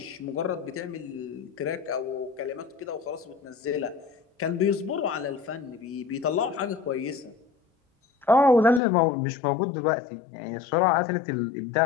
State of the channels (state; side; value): drops out; right; at 8.8 s